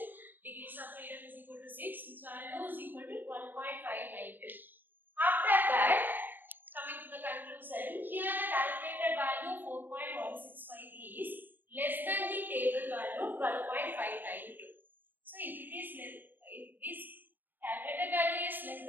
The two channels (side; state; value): left; late; 0.091 ms